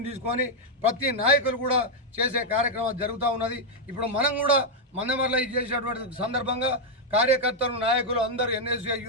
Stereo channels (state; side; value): normal; both; correlation -0.01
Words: తీసుకొని ప్రతి నాయకులు కూడా చేసే కార్యక్రమం జరుగుతూ ఉన్నది. ఇప్పుడు మనం కూడా మందమర్లో ఇది చేసినటువంటి సందర్భంగా కార్యకర్తలు, నాయకులు అందరూ ఎన్ఎస్యూఐ,